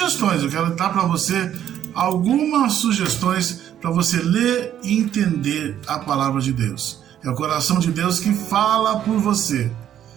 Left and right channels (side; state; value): left; quieter; 10.6 dB